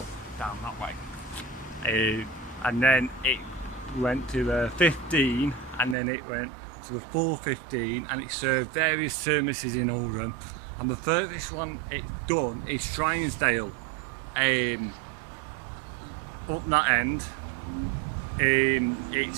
down that way. And then it went to 15 and then it went to a 415, and it served various services in Oldham. And the furthest one it's done is Strongsdale, up that end. It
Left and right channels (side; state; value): left; drops out; at 6.0 s